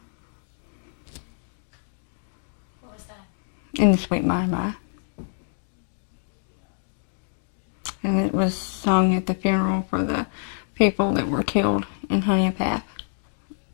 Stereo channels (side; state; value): right; silent; digital silence